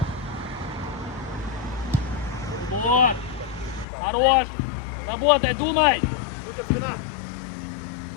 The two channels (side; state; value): right; drops out; at 3.9 s